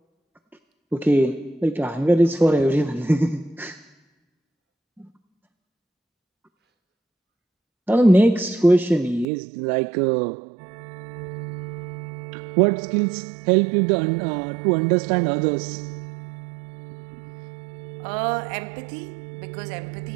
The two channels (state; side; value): drops out; left; at 9.2 s